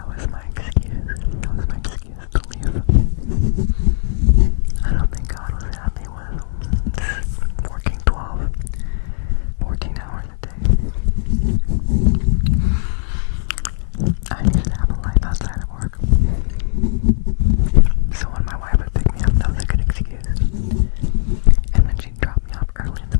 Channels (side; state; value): right; silent; digital silence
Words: was my excuse. That was my excuse to leave. I don't think God was happy with working 14 hours a day. I needed to have a life outside of work. So when my wife would pick me up, that was a good excuse. And then she'd drop me off early in the